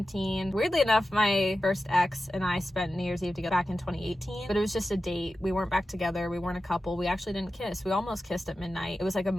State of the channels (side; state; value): both; normal; correlation 0.93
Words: Weirdly enough, my first ex and I spent New Year's Eve together back in 2018, but it was just a date. We weren't back together. We weren't a couple. We actually didn't kiss. We almost kissed at midnight. It was like a